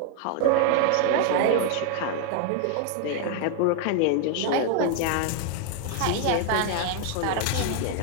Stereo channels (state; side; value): different; both; correlation 0.00